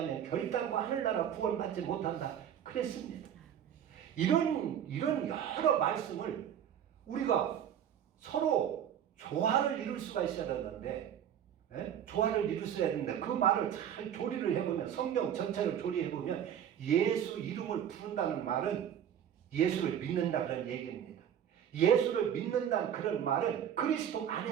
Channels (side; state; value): left; quieter; 9.5 dB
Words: 결단코 하늘나라 구원받지 못한다 그랬습니다. 이런 여러 말씀을 우리가 서로 조화를 이룰 수가 있어야 되는데 조화를 이룰 수 있어야 되는데 그 말을 잘 조리를 해보면 성경 전체를 조리해보면 예수 이름을 부른다는 말은 예수를 믿는다 그런 얘기입니다. 예수를 믿는다는 그런 말은 그리스도